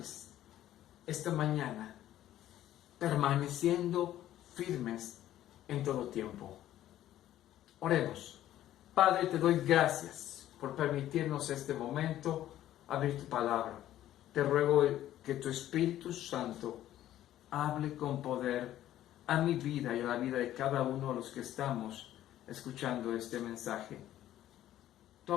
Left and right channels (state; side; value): quieter; right; 12.9 dB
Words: esta mañana, permaneciendo firmes en todo tiempo. Oremos. Padre, te doy gracias por permitirnos este momento abrir tu palabra. Te ruego que tu Espíritu Santo hable con poder a mi vida y a la vida de cada uno de los que estamos escuchando este mensaje.